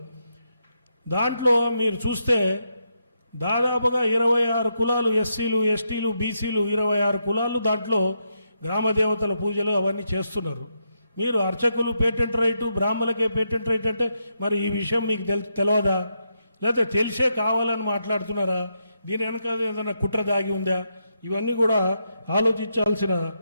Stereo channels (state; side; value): inverted; both; correlation -0.81